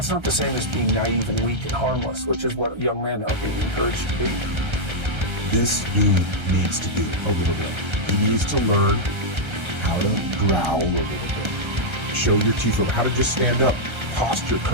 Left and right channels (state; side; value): late; left; 1.3 ms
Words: not the same as being naive and weak and harmless, which is what young men are being encouraged to be. This dude needs to be a little bit. He needs to learn how to growl a little bit. Show your teeth, how to just stand up, posture